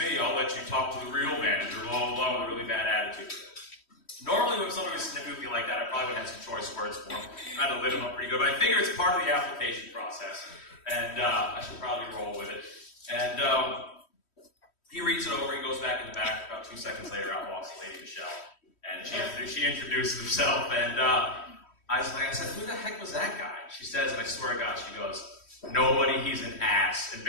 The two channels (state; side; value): late; right; 3.1 ms